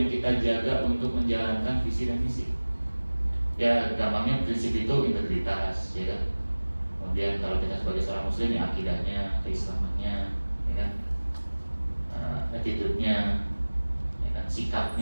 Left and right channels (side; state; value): both; inverted; correlation -1.00